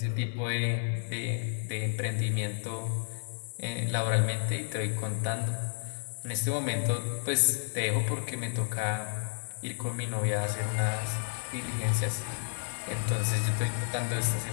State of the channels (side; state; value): right; silent; 57 dB below the other